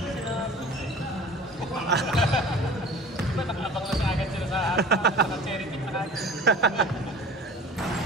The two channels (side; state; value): both; normal; correlation 0.42